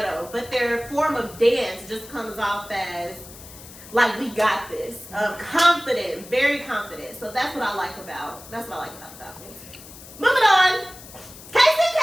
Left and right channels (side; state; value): left; noise; hiss, 17 dB below the sound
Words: but their form of dance just comes off as like, we got this. Confident, very confident. So that's what I like about the Falcons. Moving on. KCK!